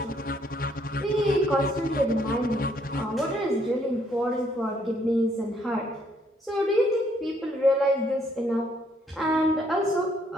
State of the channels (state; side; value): normal; both; correlation 0.69